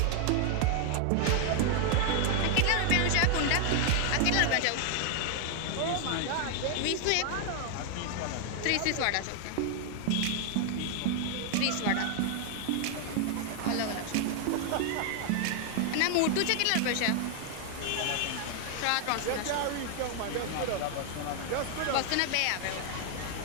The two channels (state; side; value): different; both; correlation 0.00